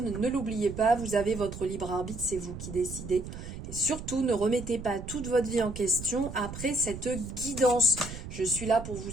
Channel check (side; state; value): right; noise; rumble, 10 dB below the sound